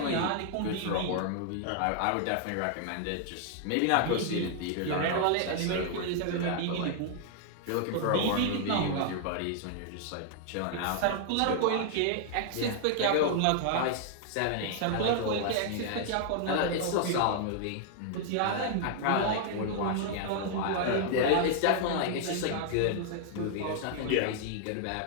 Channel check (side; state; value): both; different; correlation 0.00